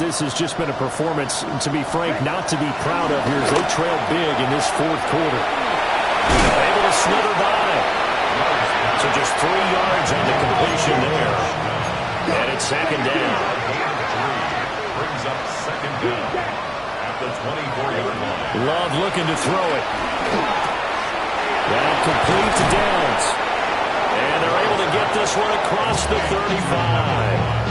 has just been a performance, to be frank, not to be proud of here as they trail big in this fourth quarter. Able to slither by. So just 3 yards on the completion there. And it's second down. Brings up second down at the 24-yard line. Love looking to throw it. That complete to Downs. And they're able to get this one across the 35.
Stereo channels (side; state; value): both; identical; correlation 1.00